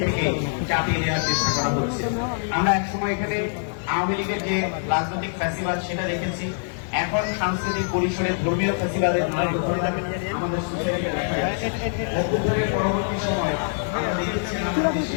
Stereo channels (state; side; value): silent; right; digital silence